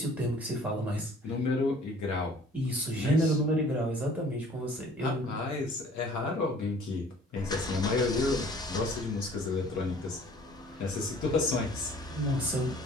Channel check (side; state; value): both; normal; correlation 0.52